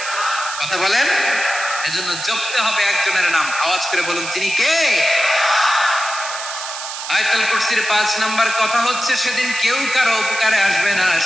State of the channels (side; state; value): right; noise; hiss, 8 dB below the sound